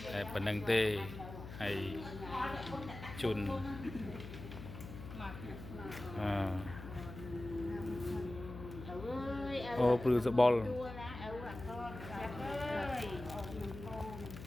តែប៉ុណ្ណឹងទេហើយជូនអូព្រឺសបល់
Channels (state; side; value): noise; left; hum, 11 dB below the sound